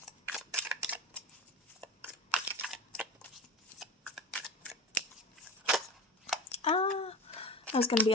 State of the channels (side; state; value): both; normal; correlation 0.31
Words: That was going to be